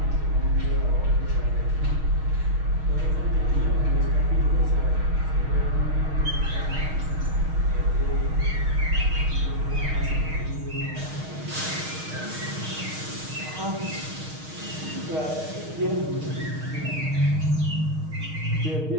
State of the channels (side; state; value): left; late; 6.4 ms